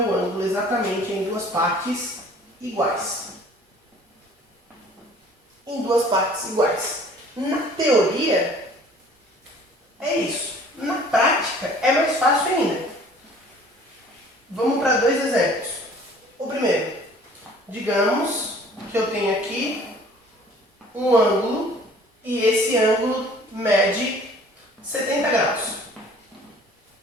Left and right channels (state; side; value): normal; both; correlation 0.52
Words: ângulo exatamente em duas partes iguais. Em duas partes iguais. Na teoria, é isso. Na prática, é mais fácil ainda. Vamos para dois exemplos. O primeiro, digamos que eu tenho aqui um ângulo e esse ângulo mede 70 graus.